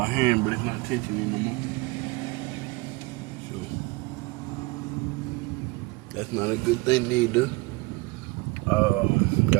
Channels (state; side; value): quieter; left; 24.1 dB